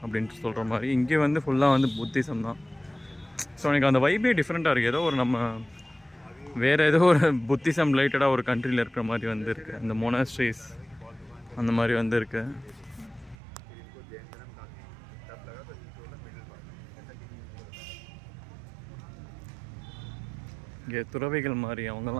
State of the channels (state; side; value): drops out; left; at 13.4 s